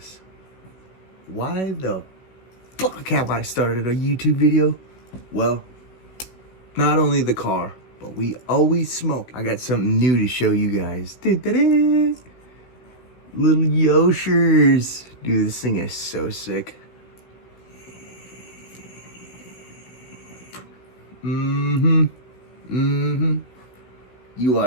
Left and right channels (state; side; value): late; right; 16 ms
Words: Why the fuck have I started a YouTube video? Well, not only the car, but we always smoke. I got something new to show you guys. Da-da-da. Little Yoshers. Dude, this thing is so sick. You